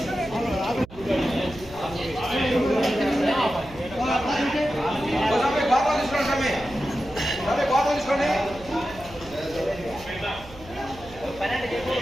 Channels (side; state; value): right; noise; hum, 19 dB below the sound